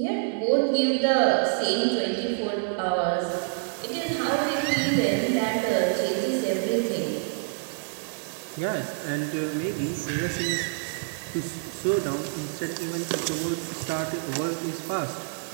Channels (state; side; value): silent; left; 60 dB below the other